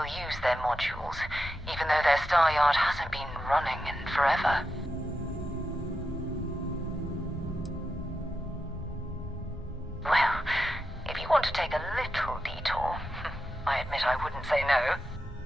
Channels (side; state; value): both; normal; correlation 0.87